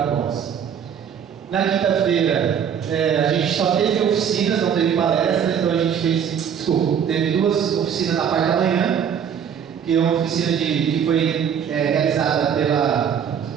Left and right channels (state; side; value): quieter; left; 8.0 dB